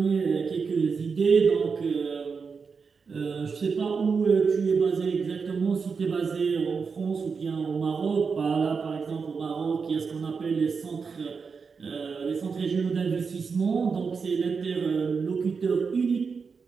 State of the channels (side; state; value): left; quieter; 5.3 dB